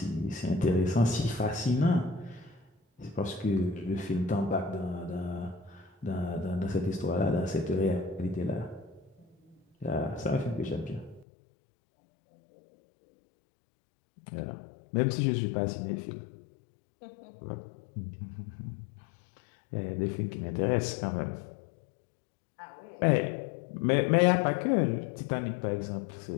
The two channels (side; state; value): right; drops out; at 11.2 s